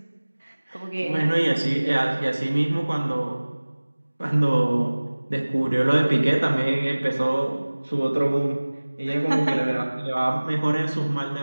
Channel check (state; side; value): inverted; both; correlation -1.00